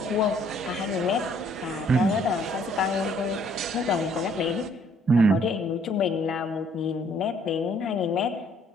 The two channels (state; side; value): normal; both; correlation 0.63